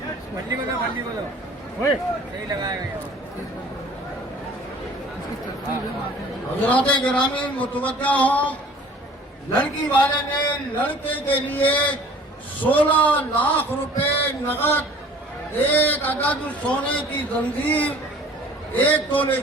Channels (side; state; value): both; normal; correlation 0.49